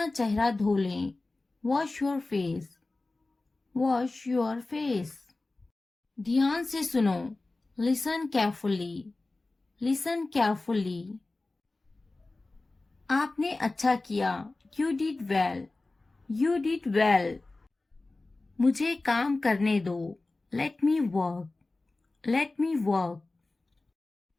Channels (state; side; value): quieter; right; 3.2 dB